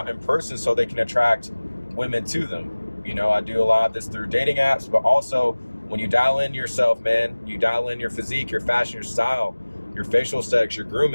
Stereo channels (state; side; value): inverted; both; correlation -1.00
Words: in person so they can attract women to them. You know, I do a lot of this through dating apps, but also when you dial in yourself, man, you dial in your physique, your fashion, your style, your facial aesthetics, your